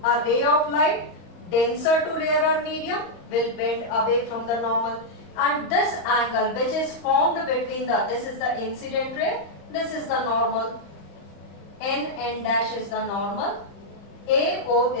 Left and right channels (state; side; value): late; right; 35 ms